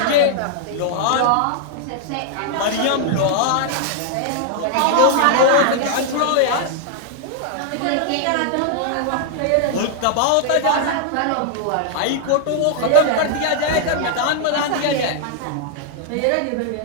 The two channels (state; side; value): different; both; correlation 0.00